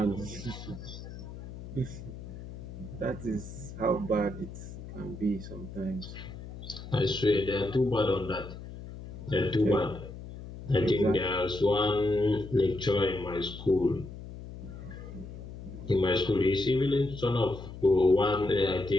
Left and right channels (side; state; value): left; noise; hum, 12 dB below the sound